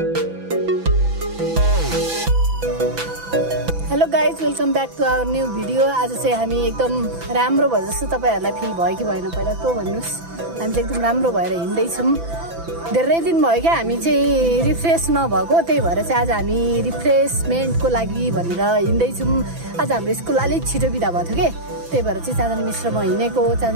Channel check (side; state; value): left; late; 6.0 ms